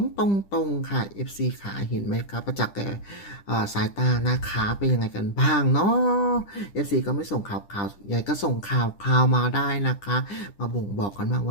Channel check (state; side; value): late; right; 10 ms